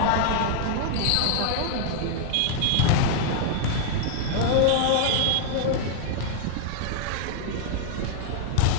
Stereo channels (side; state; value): both; different; correlation -0.01